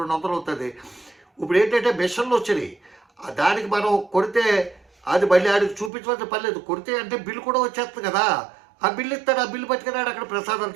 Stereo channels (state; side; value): drops out; left; at 5.9 s